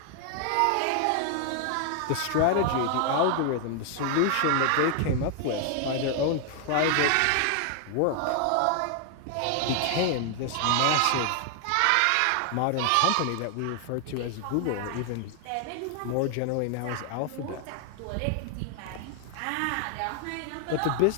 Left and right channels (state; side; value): different; both; correlation 0.00